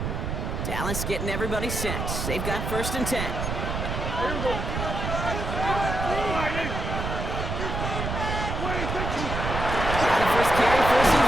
Dallas getting everybody set. They've got 1st and 10. First carry for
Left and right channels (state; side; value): noise; right; rumble, 3 dB below the sound